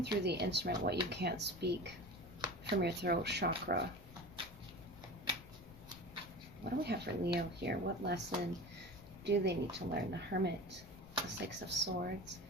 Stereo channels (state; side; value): noise; left; rumble, 19 dB below the sound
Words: through the instrument what you can't speak from your throat chakra. What do we have for Leo here? What lesson do they need to learn? The Hermit, the 6 of Swords,